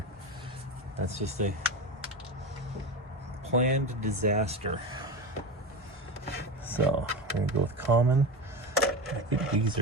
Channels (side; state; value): both; normal; correlation 0.23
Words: That's just a planned disaster. So we're gonna go with common. I think these